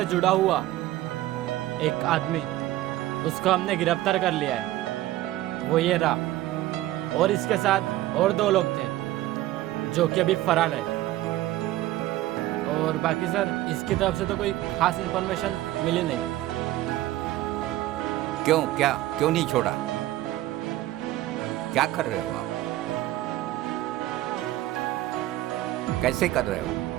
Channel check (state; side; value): quieter; left; 15.5 dB